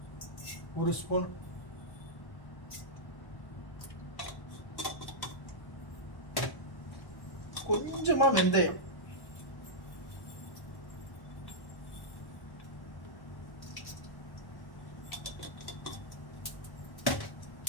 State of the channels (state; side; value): late; right; 1.1 ms